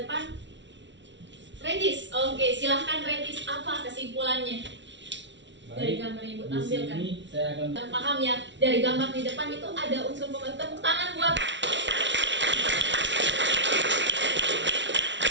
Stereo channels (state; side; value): late; left; 0.53 ms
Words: Regis. Oke, silahkan Regis, apa kesimpulannya dari gambar yang Ibu Di tampilkan? sini saya akan Paham ya, dari gambar di depan itu ada unsur pembentuk. Tepuk tangan buat